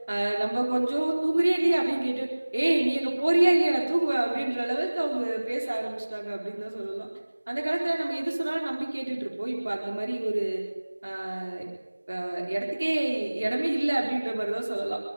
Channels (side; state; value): both; inverted; correlation -1.00